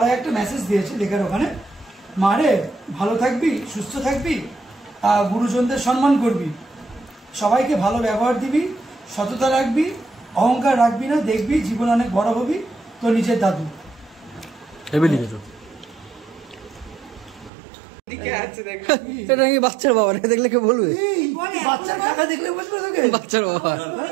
একটা মেসেজ দিয়েছে লেখার ওখানে মারে ভালো থাকবি সুস্থ থাকবি গুরুজনদের সম্মান করবি সবাইকে ভালো ব্যবহার দিবি সততা রাখবি অহংকার রাখবি না দেখবি জীবন অনেক বড় হবি তো নিজের দাদু হেভি লিখেছো এটা নাকি বাচ্চার বাবা রে দেখলে কে বলবে বাচ্চার কাকা দেখলে বুঝবে তোকে বাচ্চার বাবা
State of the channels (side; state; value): left; drops out; at 17.5 s